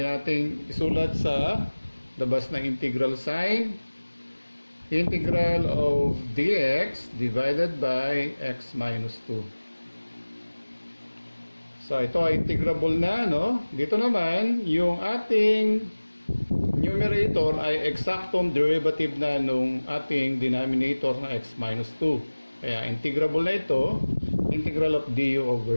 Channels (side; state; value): both; inverted; correlation -1.00